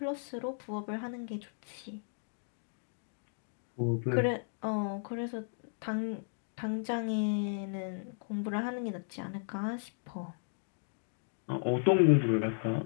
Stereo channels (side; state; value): right; silent; digital silence